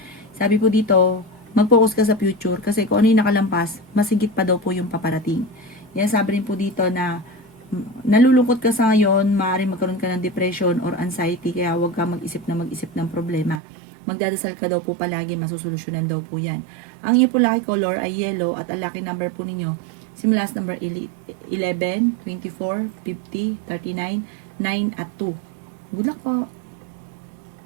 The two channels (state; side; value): drops out; left; at 13.6 s